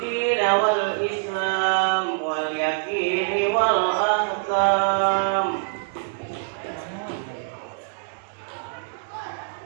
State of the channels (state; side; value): silent; left; digital silence